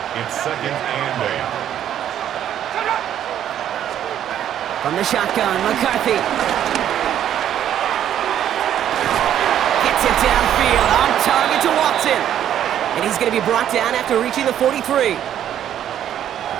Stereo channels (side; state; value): left; quieter; 10.5 dB